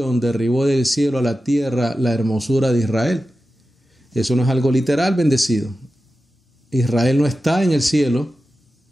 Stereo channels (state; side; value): normal; both; correlation 0.93